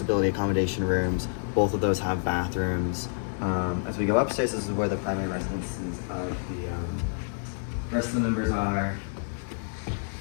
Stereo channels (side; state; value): right; silent; 59 dB below the other